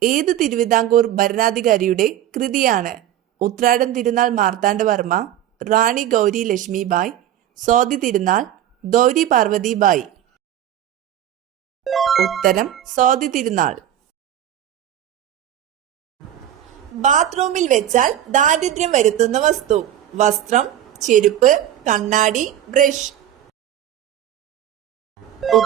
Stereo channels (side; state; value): left; quieter; 11.6 dB